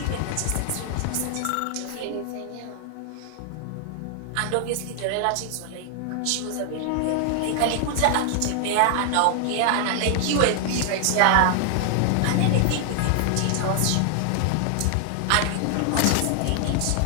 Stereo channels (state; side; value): different; both; correlation 0.00